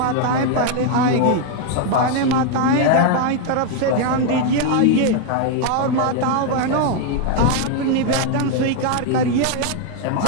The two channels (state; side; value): different; both; correlation 0.01